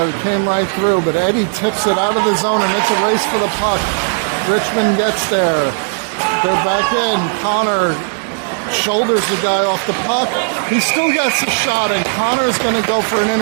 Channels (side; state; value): left; silent; digital silence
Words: came right through, but Eddie tips it out of the zone, and it's a race for the puck. Richmond gets there. They're back in. Connor shoulders the guy off the puck. He still gets a shot, and Connor's going to go for an